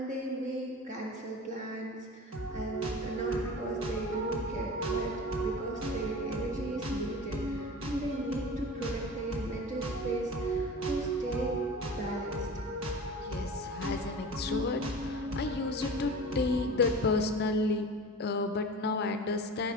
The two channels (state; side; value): normal; both; correlation 0.35